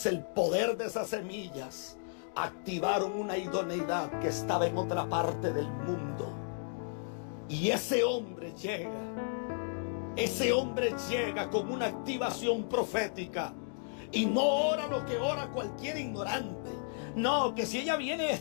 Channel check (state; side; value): silent; right; digital silence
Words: el poder de esas semillas activaron una idoneidad que estaba en otra parte del mundo. Y ese hombre llega con una activación profética. Y no ora lo que ora cualquier ignorante. No, que si ella viene